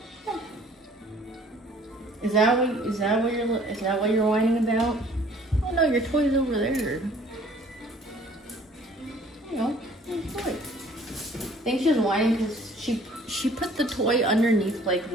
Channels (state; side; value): normal; both; correlation 0.55